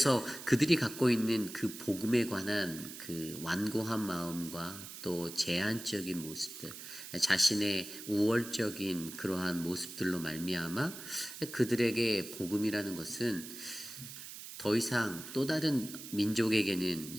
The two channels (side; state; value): right; noise; hiss, 12 dB below the sound